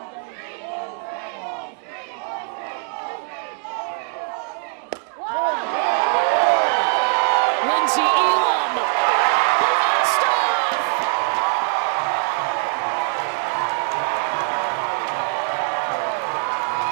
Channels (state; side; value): quieter; left; 35.5 dB